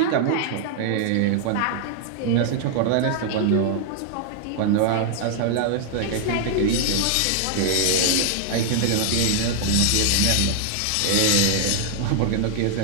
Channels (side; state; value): both; different; correlation 0.00